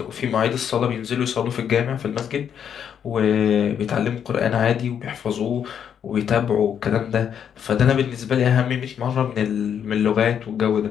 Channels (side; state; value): right; quieter; 8.4 dB